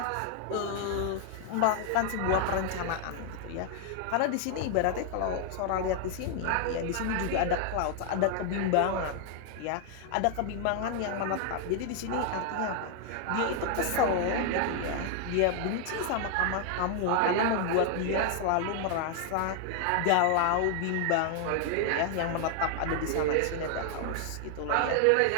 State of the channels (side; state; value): both; different; correlation 0.00